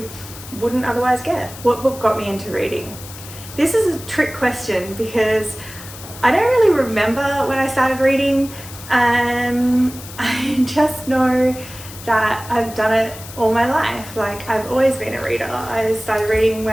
wouldn't otherwise get. What book got me into reading? This is a trick question because I don't really remember when I started reading. I just know that I've done it all my life. Like, I've always been a reader. I started reading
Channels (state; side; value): noise; left; hiss, 15 dB below the sound